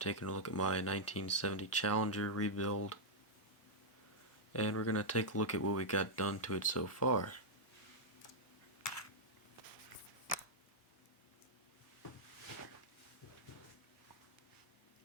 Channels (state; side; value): normal; both; correlation -0.05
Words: a look at my 1970 Challenger rebuild, and we're gonna take a look at what we got done to it so far.